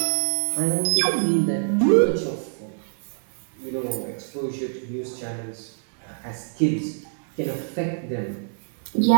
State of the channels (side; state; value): left; silent; 55 dB below the other